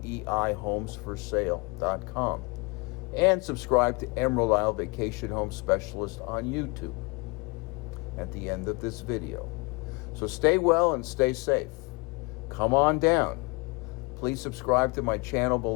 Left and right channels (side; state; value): right; quieter; 28.7 dB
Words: And subscribe to Emerald Isle Vacation Home Specialist on YouTube at the end of this video. So stay well and stay safe. Come on down. Please subscribe to my channel